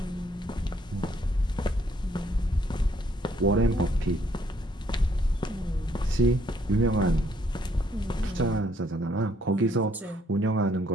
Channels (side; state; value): both; normal; correlation 0.68